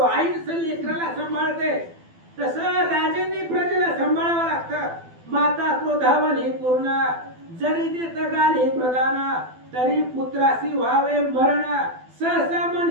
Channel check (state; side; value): late; left; 12 ms